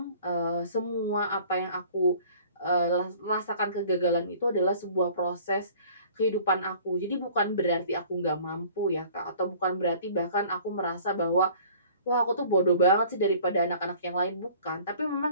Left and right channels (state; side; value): inverted; both; correlation -0.50